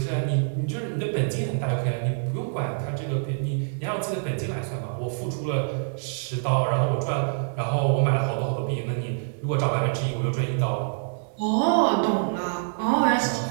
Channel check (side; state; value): left; silent; digital silence